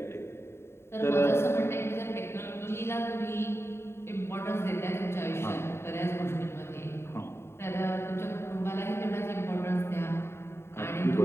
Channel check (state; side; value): late; right; 0.12 ms